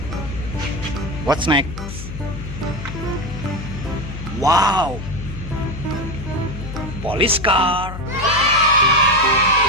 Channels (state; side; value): noise; left; hum, 9 dB below the sound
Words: What's next? Wow! Police car!